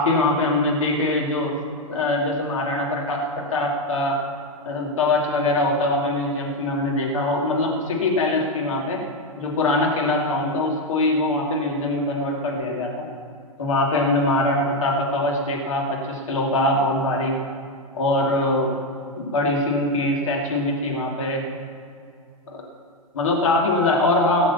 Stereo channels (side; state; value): both; normal; correlation 0.08